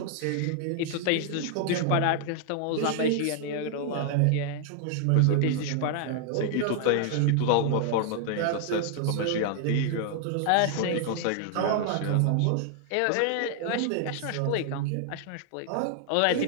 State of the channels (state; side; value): different; both; correlation 0.00